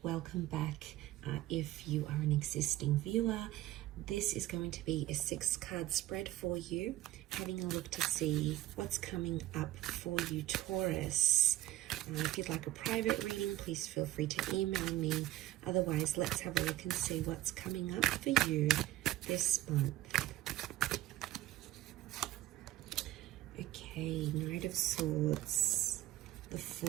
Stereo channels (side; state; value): left; quieter; 15.2 dB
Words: Welcome back if you are an existing viewer. This is going to be a 6-card spread for you, having a look to see what's coming up for you, Taurus. If you'd like a private reading, please feel free to email me. Otherwise, let's have a look and see what's coming up for you this month. Okay, Knight of Swords, the